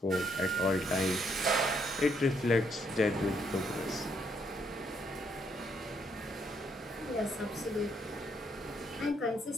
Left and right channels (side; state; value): both; normal; correlation 0.72